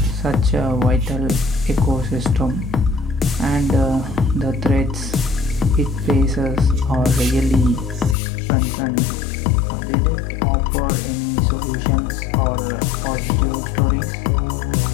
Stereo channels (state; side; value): drops out; right; at 8.2 s